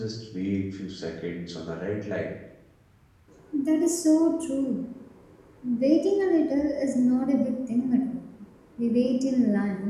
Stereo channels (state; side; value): identical; both; correlation 1.00